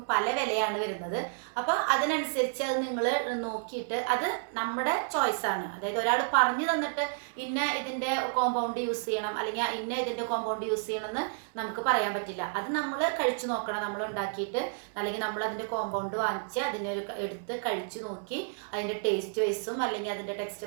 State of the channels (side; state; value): left; silent; digital silence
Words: പല വിലയാണ് വരുന്നത്. അപ്പോൾ അതിനനുസരിച്ച് അത് നിങ്ങൾ നോക്കിയിട്ട് അത് നമ്മുടെ ചോയ്സാണ്. അതായത് ഒരാൾ പറഞ്ഞു തന്നിട്ട് ഇന്ന ഇതിൻ്റെ കോമ്പൗണ്ട് യൂസ് ചെയ്യണം അല്ലെങ്കിൽ ഇന്ന ഇതിൻ്റെ കോമ്പൗണ്ട് യൂസ് ചെയ്യണം എന്ന് നമുക്ക് പറയാൻ പറ്റില്ല. അത് നമ്മൾ കഴിച്ചു നോക്കണം. നമ്മൾ ഉണ്ടാക്കിയിട്ട് അല്ലെങ്കിൽ നമ്മൾ അതിൻ്റെ കോമ്പൗണ്ട് വാങ്ങിച്ച് എടുത്ത് കഴിച്ചു നോക്കി അതിൻ്റെ ടേസ്റ്റ് വൈസും അല്ലെങ്കിൽ അതിൻ്റെ